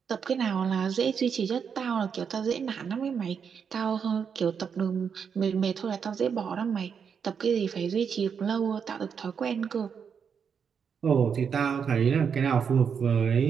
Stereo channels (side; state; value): left; quieter; 6.8 dB